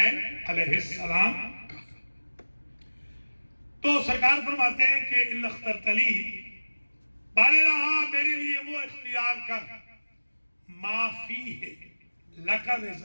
علیہ السلام کا۔ تو سرکار فرماتے ہیں کہ الا اخترت لی، بارے رہا میرے لیے وہ اختیار کر، ما فیہ لک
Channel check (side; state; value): both; inverted; correlation -1.00